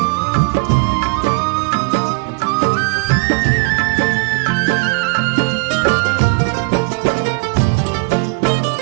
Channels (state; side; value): quieter; left; 33.1 dB